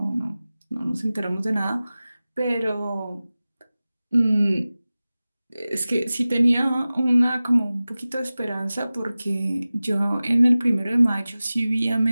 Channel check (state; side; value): inverted; both; correlation -0.97